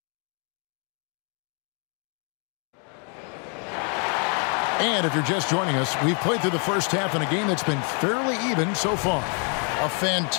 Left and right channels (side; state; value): right; quieter; 39.1 dB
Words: And if you're just joining us, we've played through the first half in a game that's been fairly even so far. A